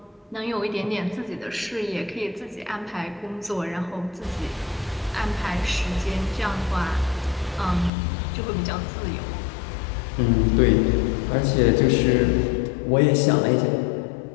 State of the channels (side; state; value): right; drops out; at 7.9 s